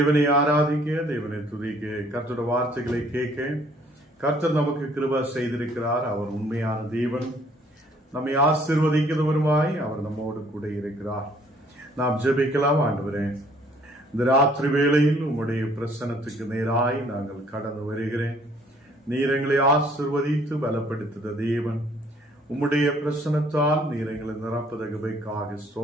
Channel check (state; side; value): normal; both; correlation 0.60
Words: ஆராதிக்க, தேவனை துதிக்க, கர்த்தருடைய வார்த்தைகளை கேட்க கர்த்தர் நமக்கு கிருபை செய்திருக்கிறார். அவர் உண்மையான தேவன், நம்மை ஆசீர்வதிக்கிறவருமாய் அவர் நம்மோடு கூட இருக்கிறார். நாம் ஜெபிக்கலாம். ஆண்டவரே, இந்த ராத்திரி வேளையில் உம்முடைய பிரசன்னத்துக்கு நேராய் நாங்கள் கடந்து வருகிறேன். நீர் எங்களை ஆசீர்வதித்து பலப்படுத்துத தேவன், உம்முடைய பிரசன்னத்தால் நீர் எங்களை நிரப்புதகவைக்காக